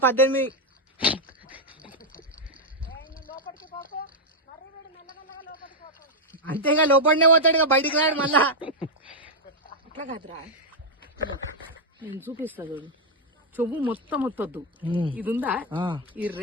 18. అంతేగా లోపలనే పోతాడు, ఇక బయటికి రాడు మళ్ళా. అట్లా కాదురా, నేను చూపిస్తా చూడు. చెవు మొత్తం వత్తొద్దు, ఇది ఉందా ఈ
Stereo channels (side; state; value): both; normal; correlation -0.02